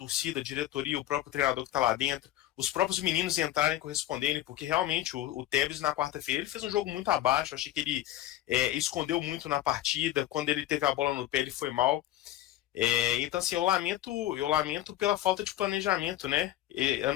a diretoria, o próprio treinador que está lá dentro, os próprios meninos entrarem e corresponderem, porque realmente o Tevez na quarta-feira ele fez um jogo muito abaixo, achei que ele escondeu muito na partida, quando ele teve a bola no pé ele foi mal. Então, assim, eu lamento pela falta de planejamento, né?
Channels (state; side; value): quieter; right; 14.0 dB